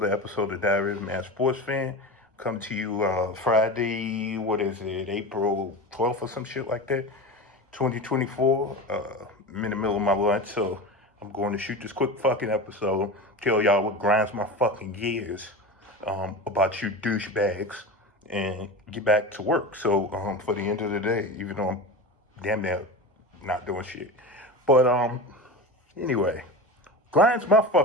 episode of Diary of a Mad Sports Fan. Come to you Friday, what is it, April 12th or some shit like that, 2024. I'm in the middle of my lunch, so I'm going to shoot this quick fucking episode, tell y'all what grinds my fucking gears about you douchebags, and get back to work. So for the end of the day, even though I'm damn near not doing shit. But anyway, grinds my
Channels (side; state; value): both; normal; correlation 0.27